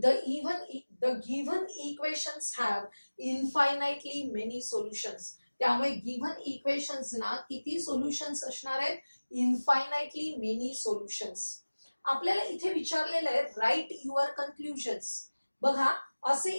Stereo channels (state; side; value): inverted; both; correlation -1.00